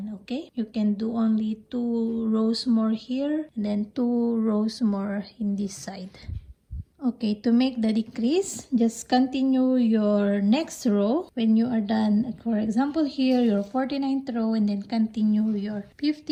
Okay, you can do only 2 rows more here and then 2 rows more in this side. Okay, to make the decrease, just continue your next row. When you are done, for example here, your 49th row, and then continue your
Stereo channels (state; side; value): identical; both; correlation 1.00